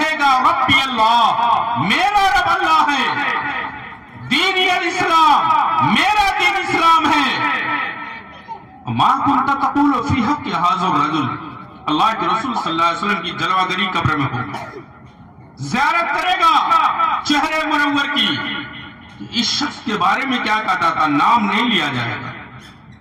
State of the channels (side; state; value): both; identical; correlation 1.00